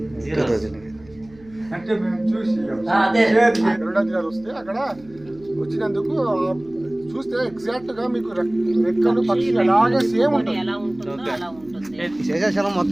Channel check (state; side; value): noise; right; hum, 25 dB below the sound